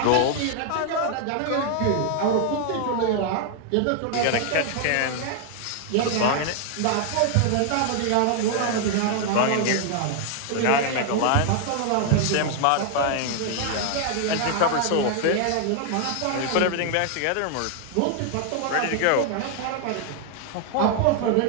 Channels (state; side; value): different; both; correlation 0.00